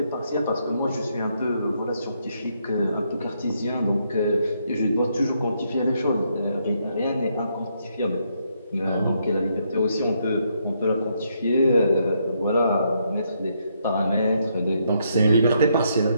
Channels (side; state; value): both; inverted; correlation -0.75